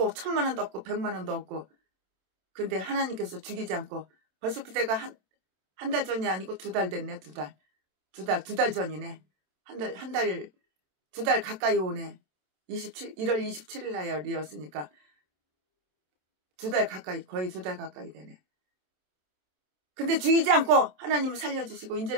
1,000만 원도 없고 100만 원도 없고 근데 하나님께서 죽이지 않고 벌써 그때가 한 달 전이 아니고 2달 됐네. 2달 전이네. 두 달 가까이 오네. 1월 27일 날이었으니까 2달 가까이 거의 2달 가까이 되네. 근데 죽이지 않고 하나님을 살려주시고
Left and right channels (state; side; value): late; left; 27 ms